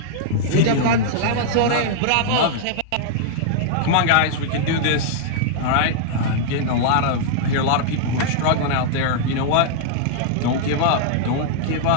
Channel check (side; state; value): both; different; correlation -0.01